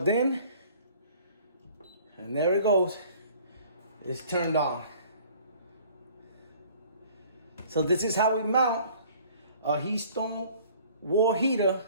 in. And there it goes. It's turned on. So this is how we mount a HeatStorm wall heater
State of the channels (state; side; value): inverted; both; correlation -0.53